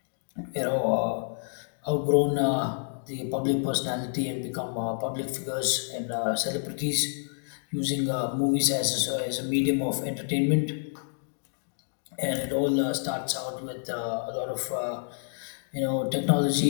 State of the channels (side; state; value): right; silent; digital silence